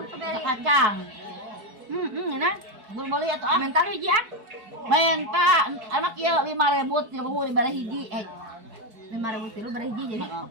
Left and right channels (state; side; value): late; left; 4.6 ms